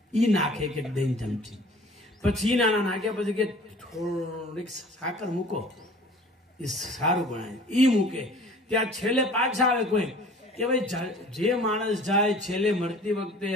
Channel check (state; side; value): normal; both; correlation 0.47